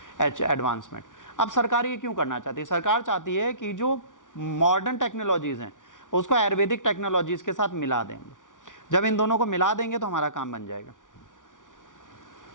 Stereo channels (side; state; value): right; late; 0.87 ms